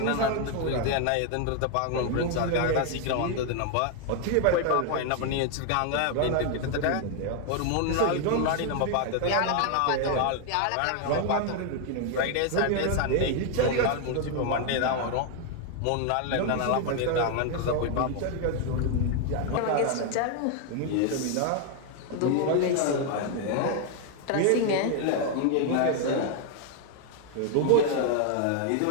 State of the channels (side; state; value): both; different; correlation 0.00